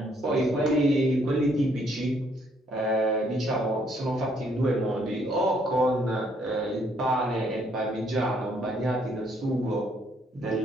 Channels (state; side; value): normal; both; correlation 0.68